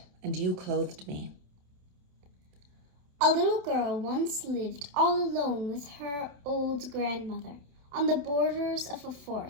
and you clothed me. A little girl once lived all alone with her old grandmother on the borders of a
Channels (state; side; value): late; left; 28 ms